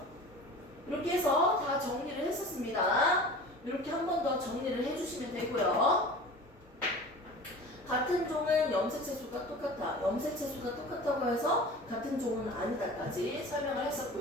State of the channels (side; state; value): both; normal; correlation 0.39